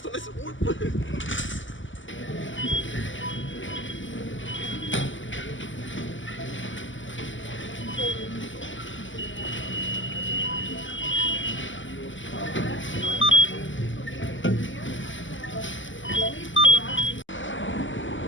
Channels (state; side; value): late; right; 0.55 ms